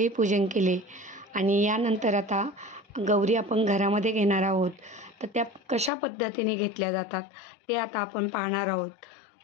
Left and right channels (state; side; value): drops out; right; at 5.9 s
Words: पूजन केले आणि यानंतर आता गौरी आपण घरामध्ये घेणार आहोत. तर त्या कशा पद्धतीने घेतल्या जातात ते आता आपण पाहणार आहोत.